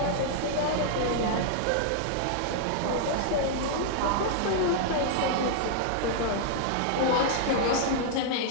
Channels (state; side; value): different; both; correlation -0.01